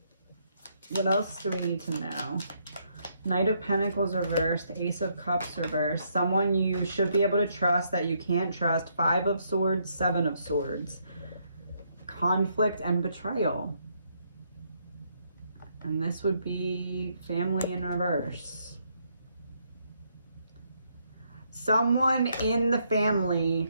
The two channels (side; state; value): both; inverted; correlation -0.73